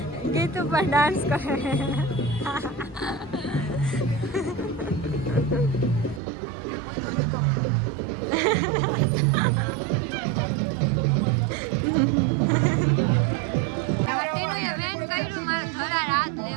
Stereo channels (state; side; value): drops out; left; at 6.2 s